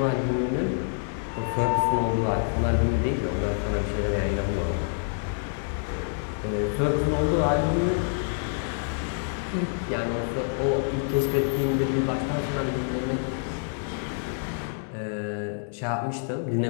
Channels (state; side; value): silent; right; digital silence